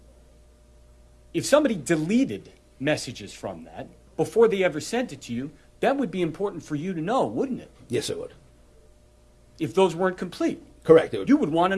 if somebody deleted messages from that before they ever sent it to you, that would be important for you to know, wouldn't it? Yes, it would. If those weren't complete. Correct. You would want to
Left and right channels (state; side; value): identical; both; correlation 1.00